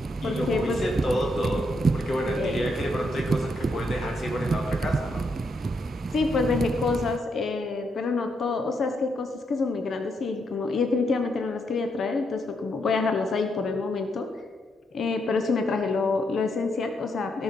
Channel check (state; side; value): normal; both; correlation 0.78